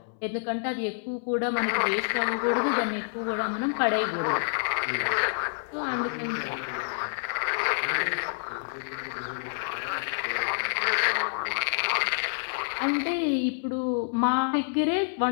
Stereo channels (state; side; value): silent; right; 59 dB below the other